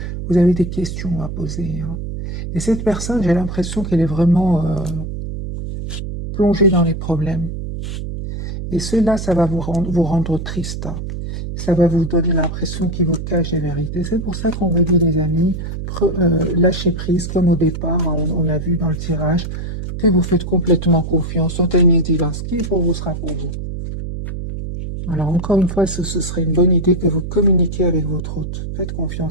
vous avez des questions à poser. Et cette personne, j'ai l'impression qu'elle est vraiment plongée dans les problèmes. Et cela, ça va vous rendre triste. Ça va vous donner l'impression qu'il vous cache les vérités. C'est pour ça qu'on vous dit, les amis, lâchez prise comme au départ, on a vu dans le tirage, que vous faites complètement confiance au timing divin. Ce qui est pour vous sera pour vous. Alors encore une fois, ce serait une bonne idée que vous communiquiez avec votre hôte. Faites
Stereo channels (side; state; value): right; noise; hum, 6 dB below the sound